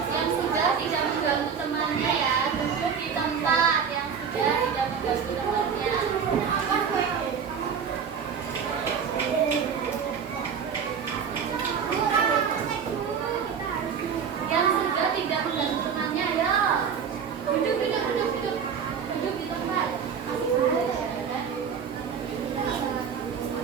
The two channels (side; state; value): left; quieter; 6.9 dB